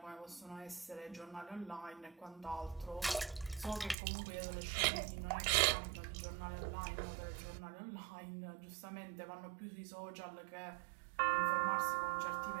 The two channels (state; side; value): drops out; left; at 4.0 s